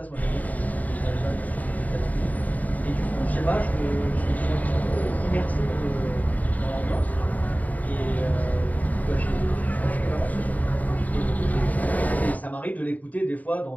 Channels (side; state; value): right; late; 0.075 ms